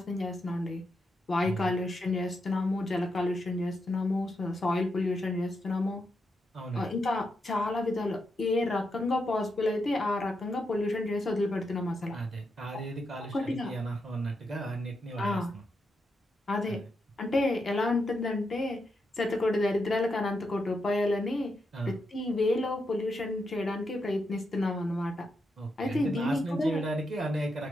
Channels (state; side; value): normal; both; correlation 0.83